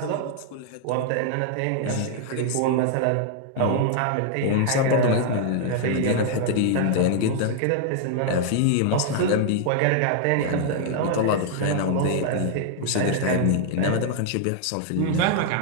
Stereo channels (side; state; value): both; different; correlation 0.00